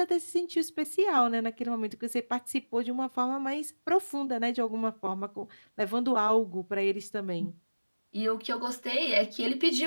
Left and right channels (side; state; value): both; inverted; correlation -1.00